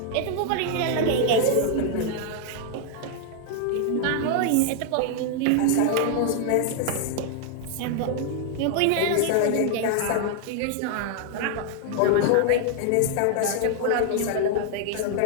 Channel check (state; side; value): different; both; correlation 0.00